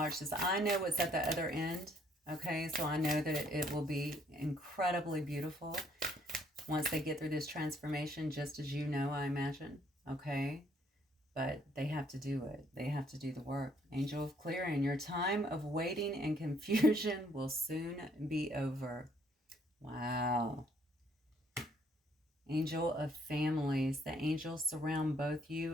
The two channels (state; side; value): normal; both; correlation 0.65